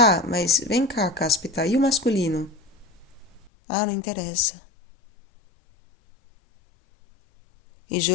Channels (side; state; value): right; drops out; at 3.5 s